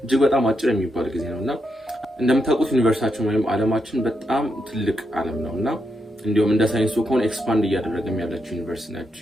እጅግ በጣም አጭር የሚባል ጊዜ ነውና እንደምታውቁት ዩኒቨርሲቲያችን ወይም ዓለማችን በጣም ትልቅ ዓለም ነውና እንዲሁም እንደ ሳይንሱ ከሆነ ኤክስፓንድ እያደረገም ያለችው ዩኒቨርሲቲ ነች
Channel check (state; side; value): normal; both; correlation 0.82